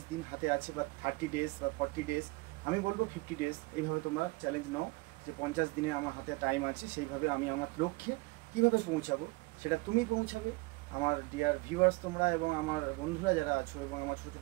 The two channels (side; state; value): left; quieter; 24.8 dB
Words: দিন হাতে আছে, বা 30 ডেজ বা 40 ডেজ, আমি বলবো 50 ডেজ। এইভাবে তোমরা চ্যালেঞ্জ নাও যে 50 দিনে আমার হাতে টাইম আছে, সেইভাবে আমি আমার লক্ষ্যে কীভাবে পৌঁছাবো সেটা তুমি পৌঁছাবে। আমার ডিয়ার ভিউয়ার্স তোমরা এবং আমার বন্ধুরা যারা আছো এবং আমার ছোটো